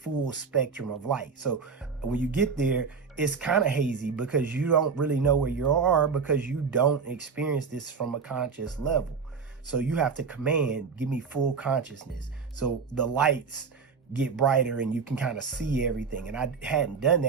spectrum of light. So when you get there, it's kind of hazy because you don't really know where you are because you don't experience this from a conscious level. So you have to command, give me full consciousness. So the lights get brighter and you can kind of see everything. And I hadn't done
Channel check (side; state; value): left; quieter; 5.5 dB